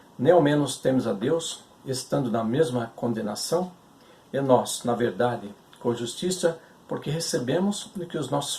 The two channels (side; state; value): both; identical; correlation 1.00